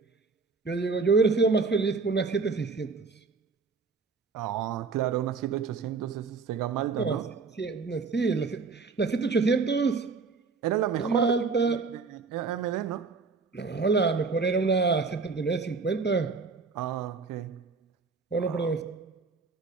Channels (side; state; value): left; quieter; 4.6 dB